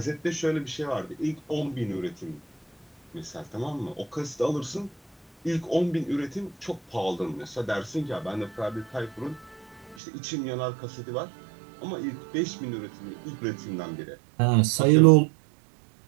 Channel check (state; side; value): drops out; left; at 10.0 s